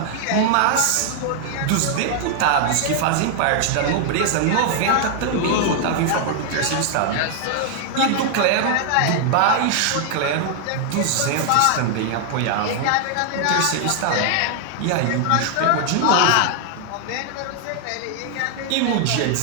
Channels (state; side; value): different; both; correlation 0.00